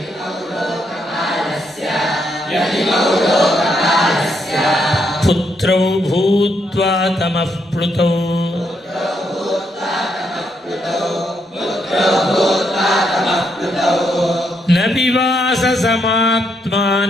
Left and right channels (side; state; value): both; normal; correlation 0.77